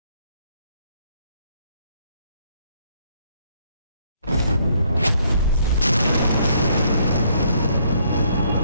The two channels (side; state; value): both; inverted; correlation -0.68